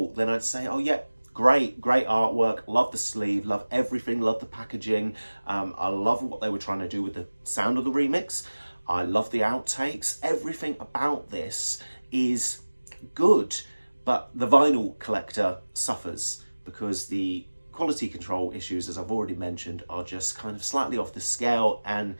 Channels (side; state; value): both; inverted; correlation -1.00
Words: then I'd say, oh yeah, great artwork, love the sleeve, love everything, love the packaging. I love what they were trying to do with the sound of the remix. I love the outtakes. Everything about this is good, but the vinyl collector suffers because the quality control issues, as I've already mentioned, are just kind of slightly off the scale, and